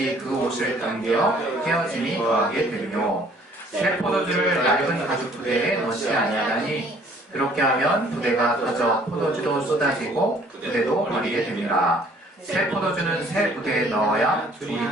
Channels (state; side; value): normal; both; correlation 0.58